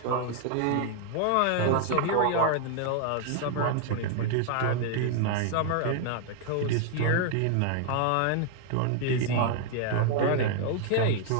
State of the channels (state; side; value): different; both; correlation 0.00